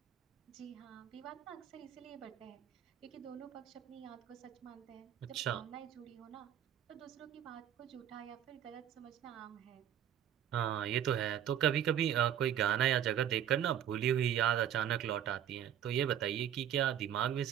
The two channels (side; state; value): left; quieter; 10.0 dB